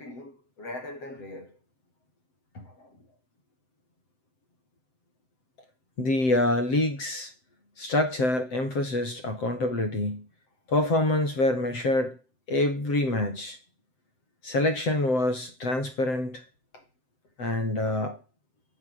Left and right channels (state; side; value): late; right; 7.8 ms